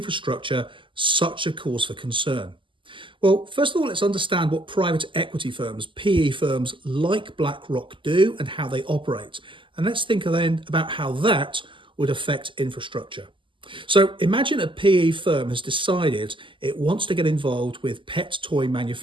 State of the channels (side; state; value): left; late; 0.25 ms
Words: such a cause for concern? Well, first of all, let's understand what private equity firms, PE firms like BlackRock do and how they operate. And let's think then about how that would affect infrastructure. So imagine a PE firm has decided it wants to get involved with pet toy